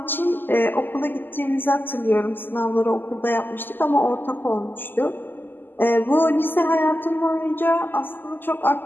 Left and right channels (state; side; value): late; right; 0.092 ms